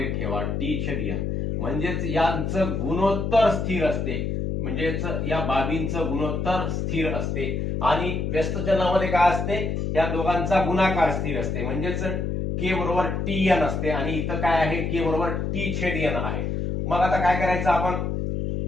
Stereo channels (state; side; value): noise; left; hum, 1 dB below the sound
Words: ठेवा, t/n. म्हणजेच यांचं गुणोत्तर स्थिर असते, म्हणजेच या बाबींचं गुणोत्तर स्थिर असते. आणि व्यस्त चलनामध्ये काय असते? या दोघांचा गुणाकार स्थिर असते. म्हणजेच के बरोबर tn असते आणि इथं काय आहे? के बरोबर t/n आहे. मग आता काय करायचं आपण?